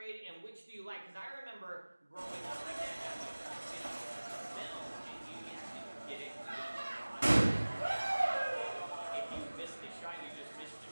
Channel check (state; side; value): inverted; both; correlation -1.00